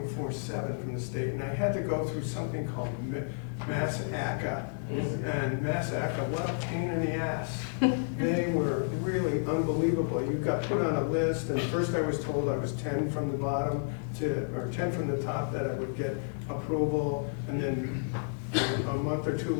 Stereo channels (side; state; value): right; silent; digital silence